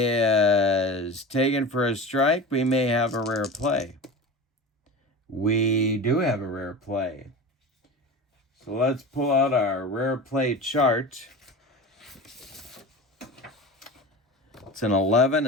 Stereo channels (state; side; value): normal; both; correlation 0.32